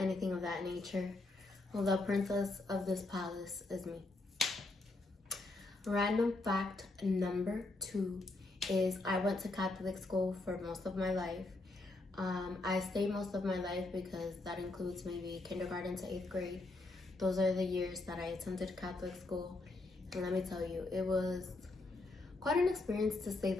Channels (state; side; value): quieter; right; 3.1 dB